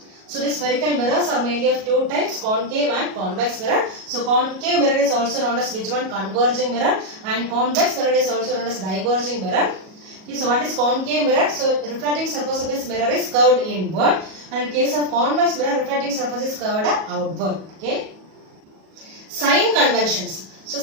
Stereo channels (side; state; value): left; late; 37 ms